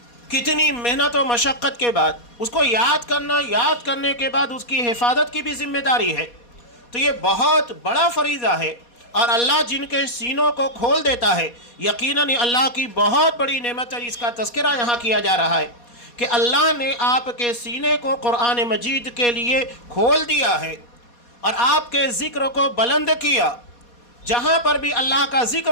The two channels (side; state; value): right; late; 4.2 ms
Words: کتنی محنت و مشقت کے بعد اس کو یاد کرنا، یاد کرنے کے بعد اس کی حفاظت کی بھی ذمہ داری ہے۔ تو یہ بہت بڑا فریضہ ہے، اور اللہ جن کے سینوں کو کھول دیتا ہے، یقیناً یہ اللہ کی بہت بڑی نعمت ہے۔ اس کا تذکرہ یہاں کیا جا رہا ہے کہ اللہ نے آپ کے سینے کو قرآن مجید کے لیے کھول دیا ہے اور آپ کے ذکر کو بلند کیا۔ جہاں پر بھی اللہ کا